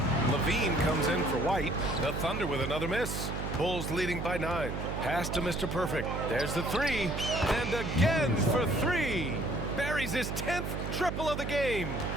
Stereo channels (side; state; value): right; noise; hum, 4 dB below the sound